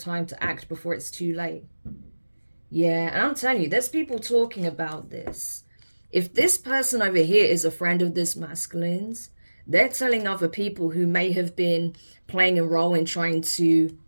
to act before it's too late. Yeah, and I'm telling you, there's people talking about this. If this person over here is a friend of this masculine's, they're telling other people who may have been playing a role in trying to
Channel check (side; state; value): both; inverted; correlation -1.00